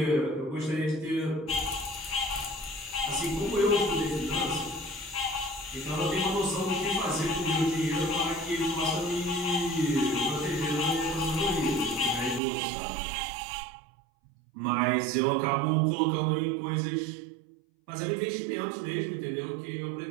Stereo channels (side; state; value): left; drops out; at 12.4 s